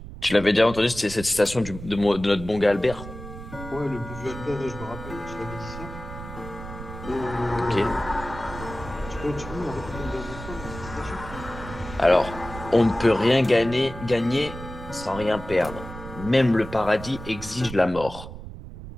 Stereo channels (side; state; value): right; noise; rumble, 12 dB below the sound